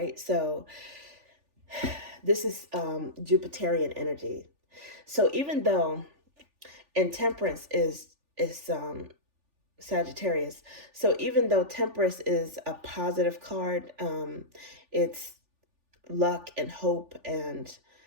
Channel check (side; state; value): left; late; 3.4 ms